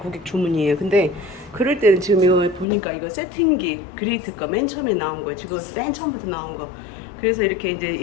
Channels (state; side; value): drops out; right; at 2.7 s